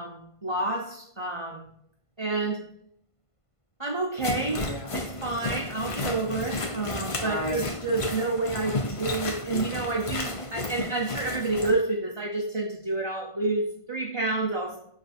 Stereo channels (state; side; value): late; right; 1.5 ms